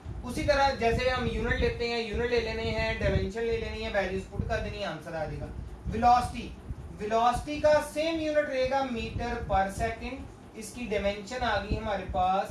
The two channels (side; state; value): both; identical; correlation 1.00